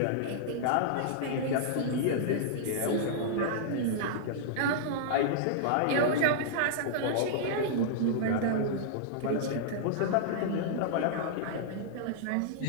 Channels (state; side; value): different; both; correlation -0.02